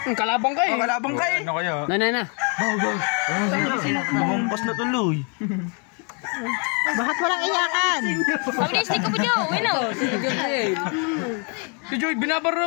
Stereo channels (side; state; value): right; quieter; 36.8 dB